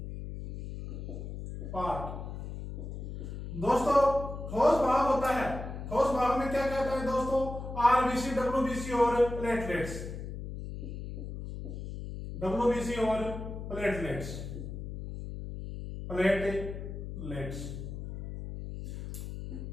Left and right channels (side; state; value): left; noise; hum, 8 dB below the sound